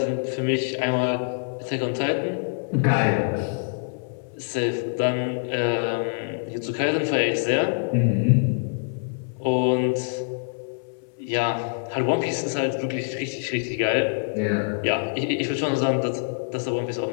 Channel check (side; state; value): right; silent; 59 dB below the other